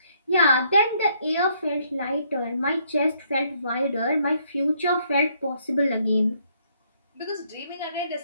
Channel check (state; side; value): inverted; both; correlation -0.69